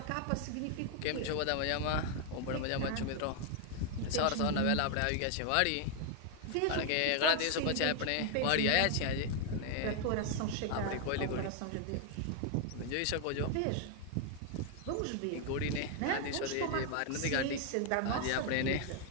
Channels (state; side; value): different; both; correlation 0.00